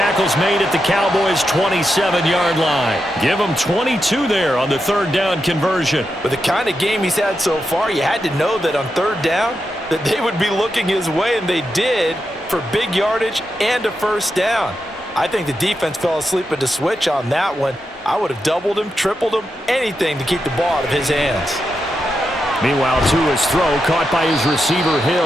made at the Cowboys' 27-yard line. Give him 22 there on the 3rd down conversion. With the kind of game he's had so far, you had to know that on 3rd down that they would be looking his way, and they did, for big yardage and a first down. I think the defense fell asleep at the switch on that one. I would have doubled him, tripled him, anything to keep the ball out of his hands. Meanwhile, Tua's throw caught by his receiver,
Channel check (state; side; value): normal; both; correlation 0.87